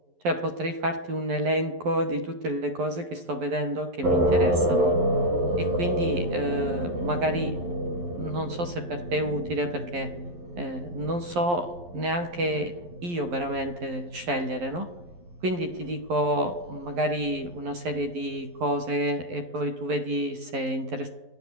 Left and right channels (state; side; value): late; left; 11 ms